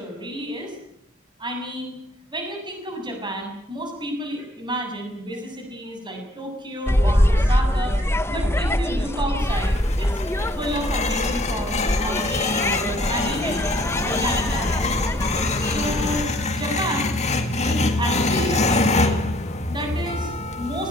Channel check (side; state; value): both; normal; correlation 0.62